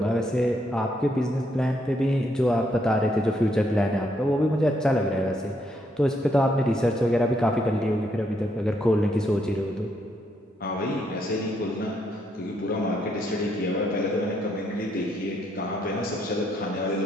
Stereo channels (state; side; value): normal; both; correlation 0.74